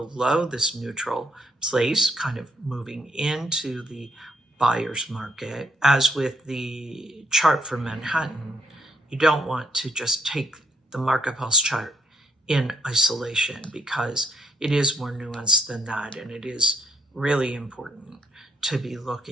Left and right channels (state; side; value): normal; both; correlation 0.70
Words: this neutral place, kind of moving into the buyer's market. As with the chart for Manhattan, you don't want to just take the market pulse chart in isolation, because it is more nuanced than that, and it is really important to be